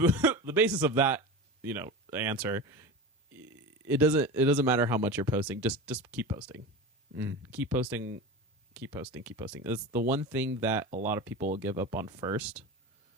basis of that, answer, it doesn't matter how much you're posting. Just keep posting. Keep posting. It's the one thing that a lot of people will give up on first.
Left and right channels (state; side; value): normal; both; correlation 0.28